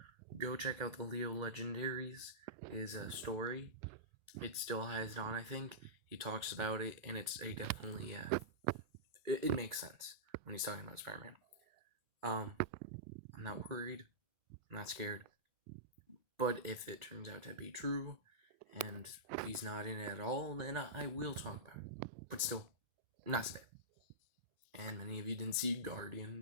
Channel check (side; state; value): left; late; 2.1 ms